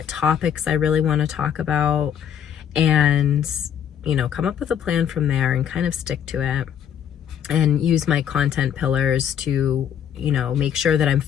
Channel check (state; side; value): quieter; right; 8.9 dB